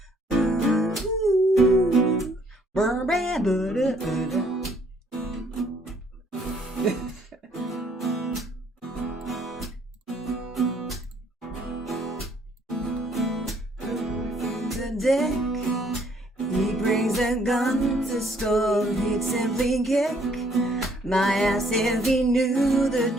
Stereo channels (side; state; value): both; normal; correlation 0.65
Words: The dick, he brings a gun to school. He'd simply kick my ass if he knew the